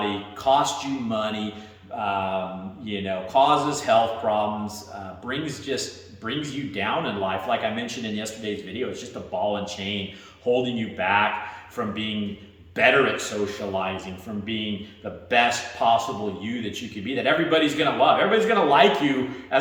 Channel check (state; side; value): identical; both; correlation 1.00